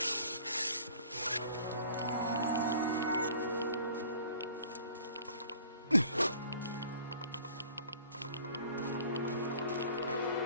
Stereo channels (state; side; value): inverted; both; correlation -0.51